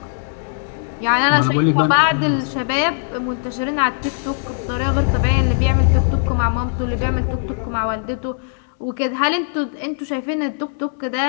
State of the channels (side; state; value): right; silent; 66 dB below the other